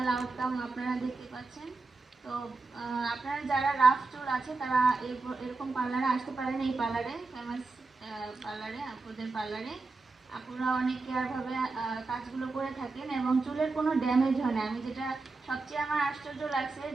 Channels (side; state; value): left; quieter; 3.8 dB